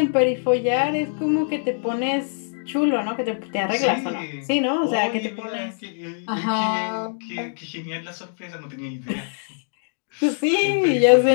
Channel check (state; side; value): silent; right; 63 dB below the other